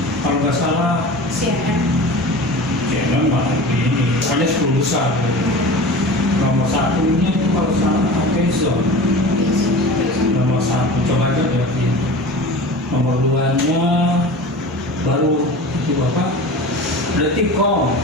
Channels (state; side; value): normal; both; correlation 0.35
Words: Kalau nggak salah CNN malah ini, hanya 10 besar. Nomor 1-nya itu kalau salah Amazon. Nomor 1, coba aja lihat ini. Nomor 2-nya baru itu apa? Detikcom,